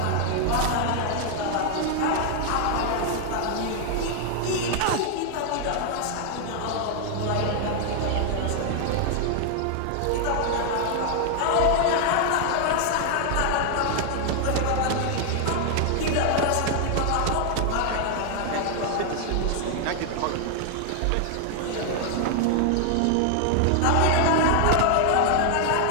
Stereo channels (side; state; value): both; different; correlation 0.00